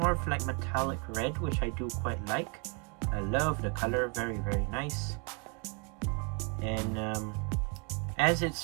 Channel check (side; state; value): left; quieter; 34.3 dB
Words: of like metallic red, which I do quite like. I love the color, very nice. And as